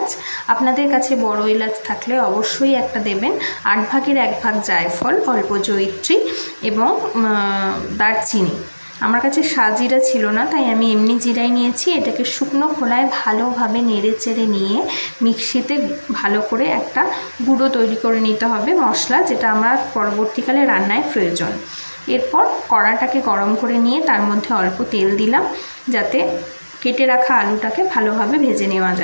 আপনাদের কাছে বড় এলাচ থাকলে অবশ্যই একটা দেবেন। 8 ভাগের 1 ভাগ জায়ফল, অল্প জয়িত্রী এবং দারচিনি। আমার কাছে সাজিরা ছিল না, তাই আমি এমনি জিরাই নিয়েছি। এটাকে শুকনো খোলায় ভালোভাবে নেড়ে চেড়ে নিয়ে মিক্সিতে ভালো করে একটা গুঁড়ো তৈরি করে নিতে হবে মশলা, যেটা আমার পরবর্তীকালে রান্নায় প্রয়োজন। এরপর কড়াটাকে গরম করে নিয়ে তার মধ্যে অল্প তেল দিলাম, যাতে কেটে রাখা আলুটাকে ভালোভাবে ভেজে নেওয়া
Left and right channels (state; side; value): inverted; both; correlation -1.00